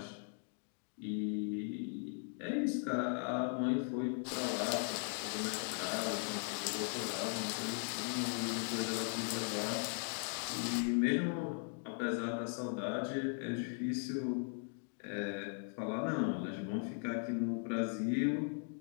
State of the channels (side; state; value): right; silent; 52 dB below the other